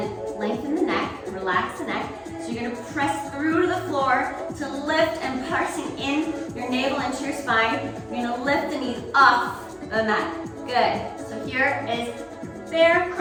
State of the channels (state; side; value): identical; both; correlation 1.00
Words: lengthen the neck, relax the neck. So you're gonna press through to the floor to lift and pressing in your navel into your spine. You're gonna lift the knees off the mat. Good. So here is bear